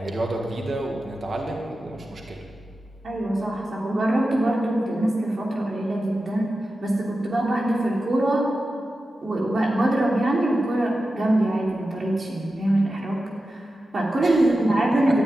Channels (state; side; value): normal; both; correlation 0.92